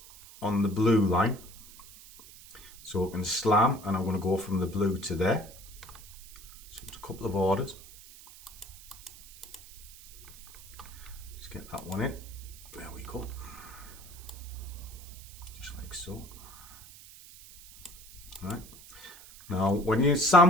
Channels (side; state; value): right; noise; hiss, 18 dB below the sound